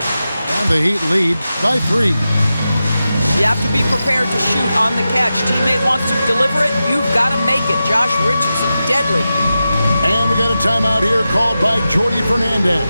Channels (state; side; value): inverted; both; correlation -0.92